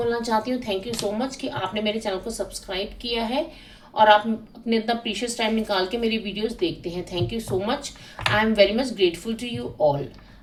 चाहती हूँ। थैंक यू सो मच कि आपने मेरे चैनल को सब्सक्राइब किया है और आप अपने इतना प्रीशियस टाइम निकाल के मेरी वीडियोस देखते हैं। Thank you so much. I am very much grateful to you all.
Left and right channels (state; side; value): identical; both; correlation 1.00